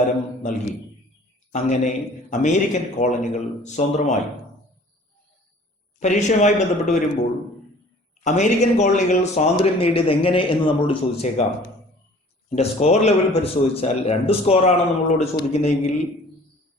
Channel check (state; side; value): normal; both; correlation 0.50